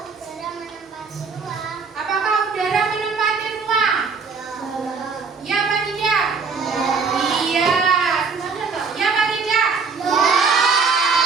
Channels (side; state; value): left; quieter; 5.1 dB